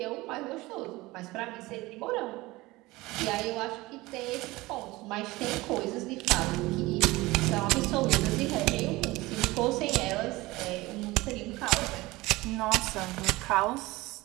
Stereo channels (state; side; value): quieter; left; 20.4 dB